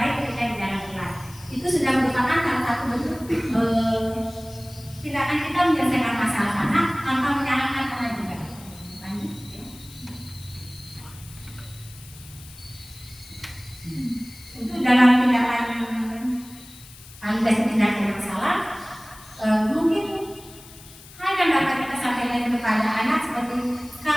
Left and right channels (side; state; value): left; noise; hiss, 20 dB below the sound